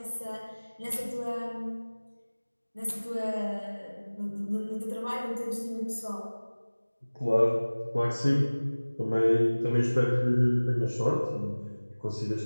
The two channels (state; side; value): inverted; both; correlation -1.00